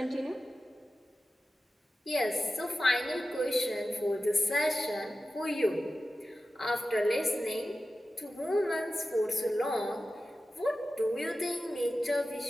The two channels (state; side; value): normal; both; correlation 0.93